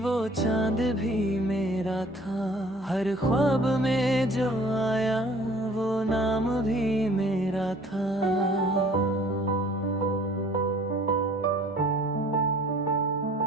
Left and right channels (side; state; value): both; normal; correlation 0.52